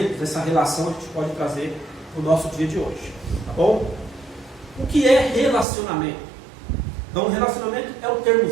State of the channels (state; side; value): drops out; left; at 5.7 s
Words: essa relação a gente pode trazer para o nosso dia de hoje. Tá bom? O que é relacionamento? Então, relacionamento é o termo